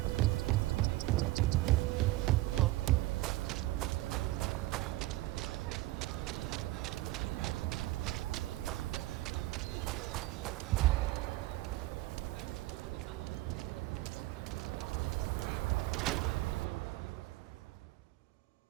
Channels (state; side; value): quieter; left; 18.4 dB